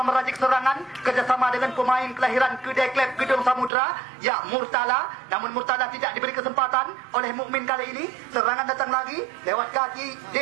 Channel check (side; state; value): left; drops out; at 3.7 s